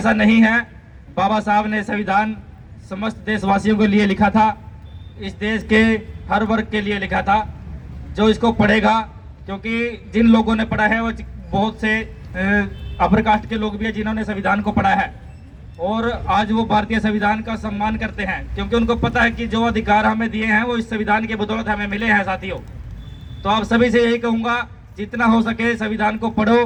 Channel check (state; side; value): identical; both; correlation 1.00